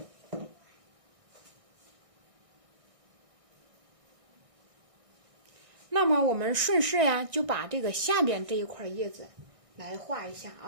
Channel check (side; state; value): left; late; 1.6 ms